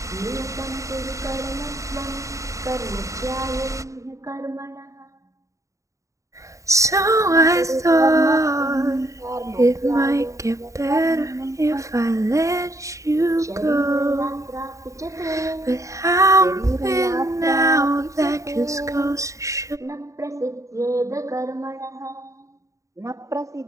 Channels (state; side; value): late; left; 0.15 ms